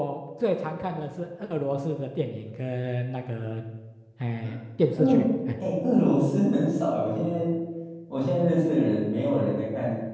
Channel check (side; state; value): both; identical; correlation 1.00